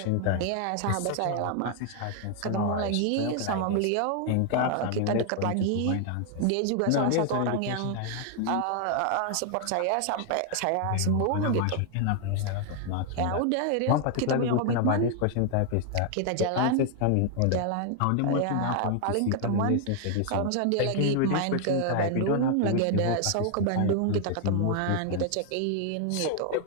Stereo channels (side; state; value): both; different; correlation 0.00